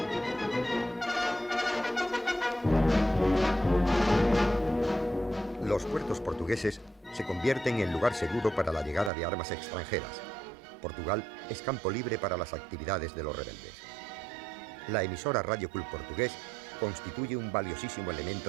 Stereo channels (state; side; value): drops out; left; at 9.1 s